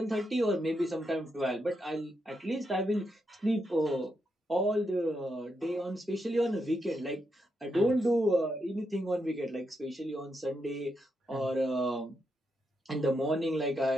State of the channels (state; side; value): normal; both; correlation 0.83